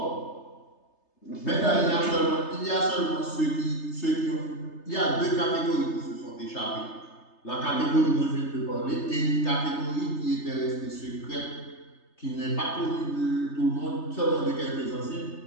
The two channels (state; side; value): late; right; 3.3 ms